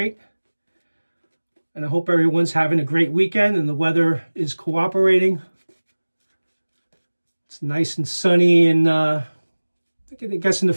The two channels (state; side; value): inverted; both; correlation -1.00